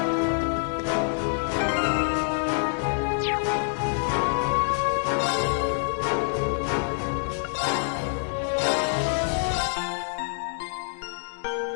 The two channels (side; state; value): right; silent; digital silence